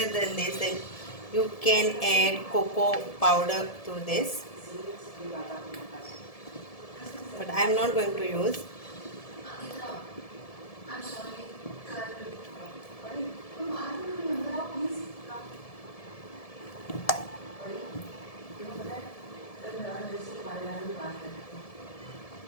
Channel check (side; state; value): right; late; 1.7 ms